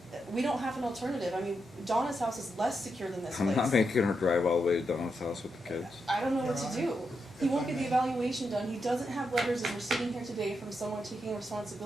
We don't have an alternative, I mean, Donna's house is less secure than this I'm place. not making her drive all the way to Donna's house with the kids. I don't know what Your to do. Honor, He if won't I get the may. evaluation done, he doesn't have letters, and we're sitting here today from someone taking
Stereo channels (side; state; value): both; normal; correlation 0.84